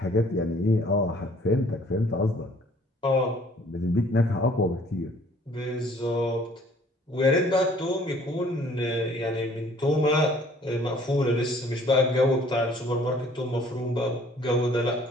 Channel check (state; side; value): normal; both; correlation 0.56